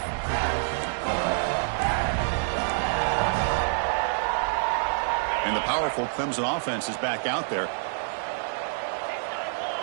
And the powerful Clemson offense is back out there.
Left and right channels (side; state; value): left; silent; digital silence